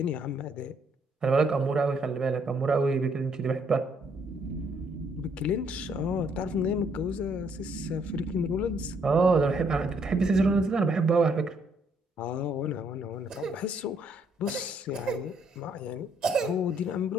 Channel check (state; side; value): normal; both; correlation 0.69